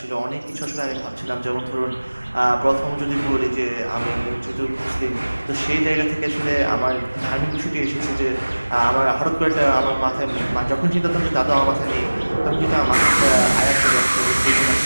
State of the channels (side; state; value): both; inverted; correlation -1.00